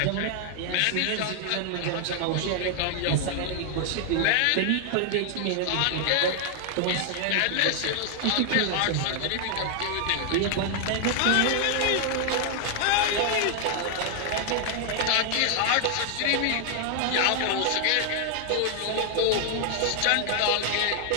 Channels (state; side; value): different; both; correlation 0.00